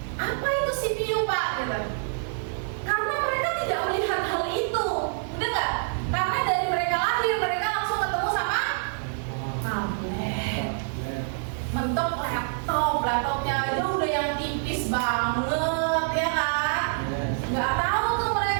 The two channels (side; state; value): left; silent; 56 dB below the other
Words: apa itu CPU Pak? Gitu. Karena mereka tidak melihat hal itu, udah nggak? Karena dari mereka lahir, mereka langsung ketemu sama tablet, mentok laptopnya aja udah yang tipis banget, ya kan? Nggak tahu tuh